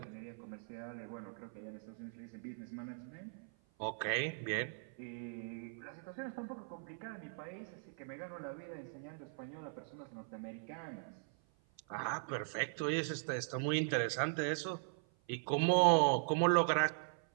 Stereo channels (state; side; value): silent; left; 51 dB below the other